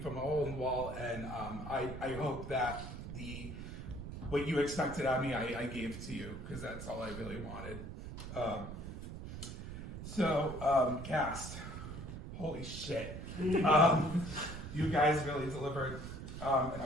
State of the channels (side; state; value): right; noise; rumble, 9 dB below the sound